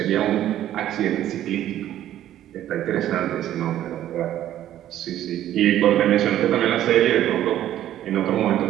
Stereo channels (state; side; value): quieter; left; 12.3 dB